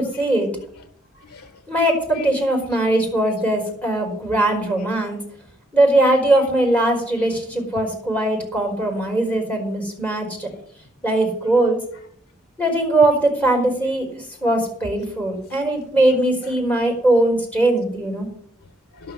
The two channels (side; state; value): both; normal; correlation 0.73